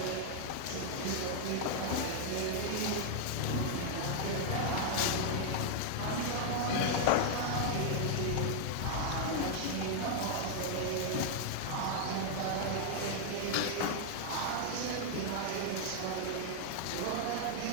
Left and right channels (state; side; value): different; both; correlation 0.00